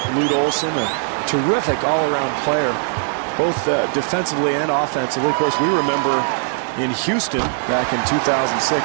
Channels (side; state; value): left; silent; 63 dB below the other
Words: Lute Olson, a terrific all-around player, both defensively and offensively. Of course, we remember in Houston back in 2006